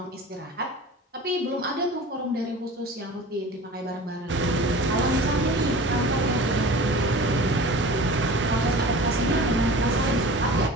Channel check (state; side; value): normal; both; correlation 0.38